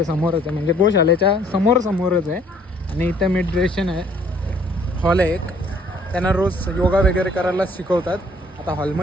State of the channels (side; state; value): both; normal; correlation 0.60